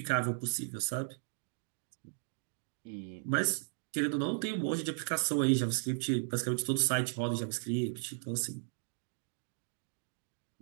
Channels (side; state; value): left; silent; digital silence